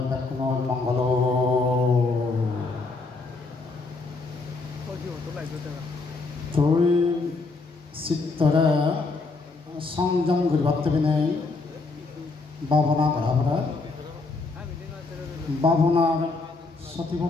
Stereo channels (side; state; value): right; quieter; 3.7 dB